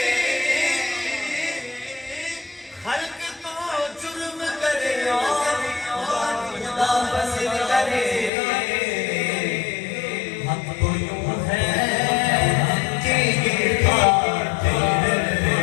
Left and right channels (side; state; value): right; drops out; at 8.3 s